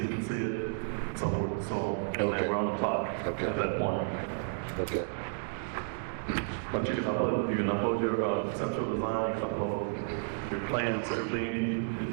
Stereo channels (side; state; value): left; silent; digital silence